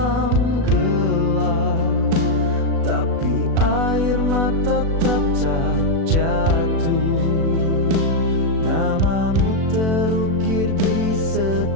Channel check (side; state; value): left; late; 36 ms